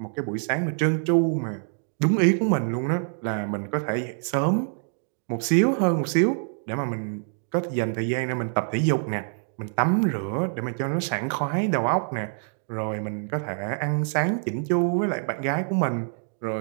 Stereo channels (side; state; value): left; silent; 58 dB below the other